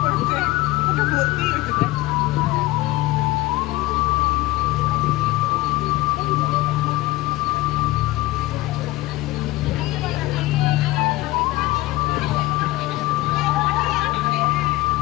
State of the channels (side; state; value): right; quieter; 18.5 dB